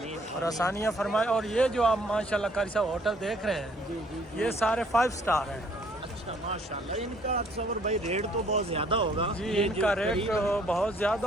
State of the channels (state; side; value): normal; both; correlation 0.62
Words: और आसानियाँ फरमाए। और ये जो आप माशाल्लाह कारी साहब होटल देख रहे हैं, जी, ये सारे 5 स्टार हैं। अच्छा, माशाल्लाह। इनका तसव्वुर भाई रेट तो बहुत ज़्यादा होगा। जी, इनका रेट बहुत